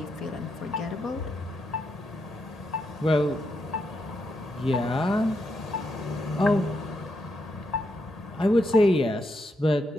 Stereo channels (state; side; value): normal; both; correlation 0.81